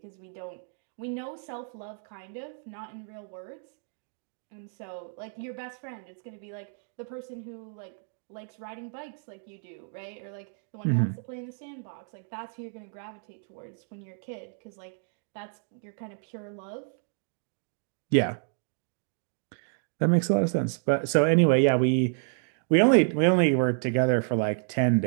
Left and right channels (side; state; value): left; silent; 58 dB below the other